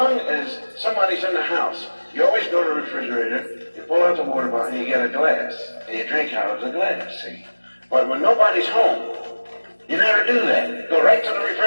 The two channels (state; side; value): inverted; both; correlation -1.00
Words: as somebody's in the house, you always go to the refrigerator, you pull out the water bottle, and you get a glass, and you drink out of the glass, see? But when nobody's home, you never do that. Go right to the